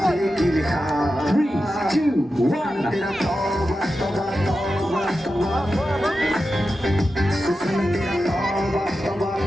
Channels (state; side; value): normal; both; correlation 0.91